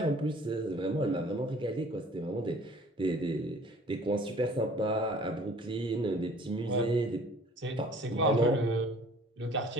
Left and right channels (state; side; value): normal; both; correlation 0.51